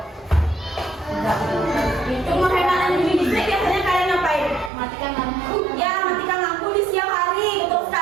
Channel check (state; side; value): drops out; left; at 4.7 s